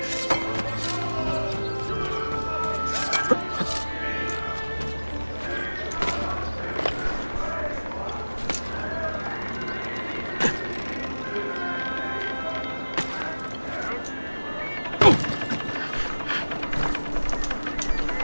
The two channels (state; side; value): inverted; both; correlation -1.00